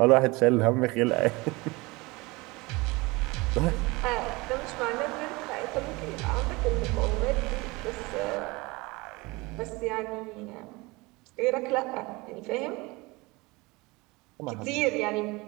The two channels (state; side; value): quieter; left; 23.9 dB